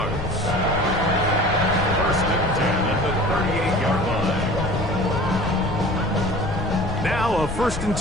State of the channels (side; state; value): left; noise; rumble, 8 dB below the sound